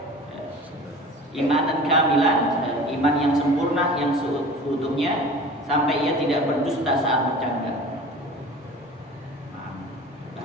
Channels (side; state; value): both; normal; correlation 0.40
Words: imanan kamilan, iman yang sempurna, yang seutuhnya, sampai ia tidak berdusta saat bercanda.